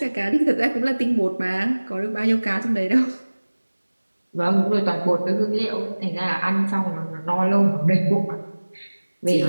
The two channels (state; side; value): inverted; both; correlation -1.00